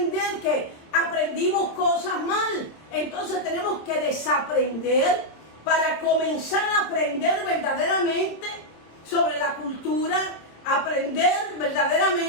que aprendimos cosas mal. Entonces tenemos que desaprender para comenzar a aprender verdaderamente sobre la cultura, aprender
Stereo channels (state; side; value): late; right; 26 ms